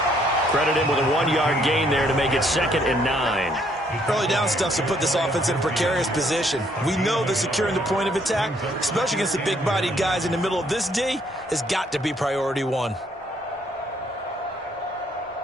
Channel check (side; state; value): both; normal; correlation 0.68